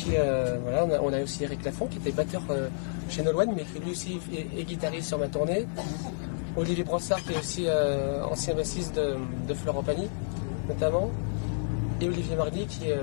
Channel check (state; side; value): silent; right; digital silence